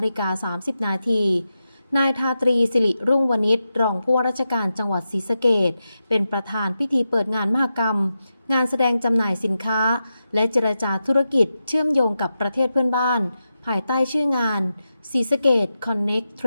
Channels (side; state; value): both; inverted; correlation -0.90